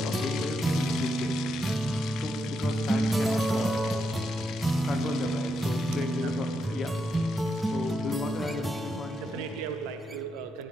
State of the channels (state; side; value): normal; both; correlation 0.82